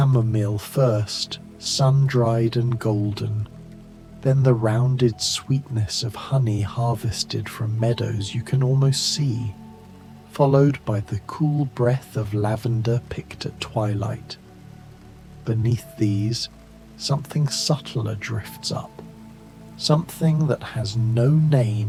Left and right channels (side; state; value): both; identical; correlation 1.00